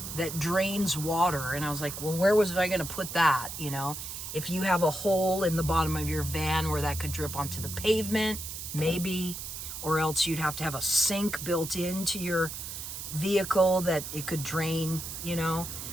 that drains water. And I was like, well, where was I going to put that? You know, if you have a hole in the bottom of your van where that could drip onto the pavement, maybe, or else you'd have to have a sink built into your vehicle that it could drain, you know,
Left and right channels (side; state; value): right; noise; hiss, 8 dB below the sound